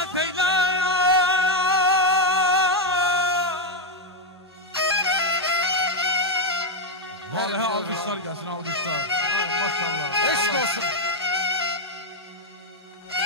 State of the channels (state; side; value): normal; both; correlation 0.03